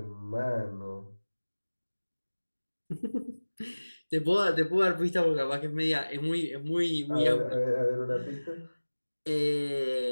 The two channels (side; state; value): both; inverted; correlation -1.00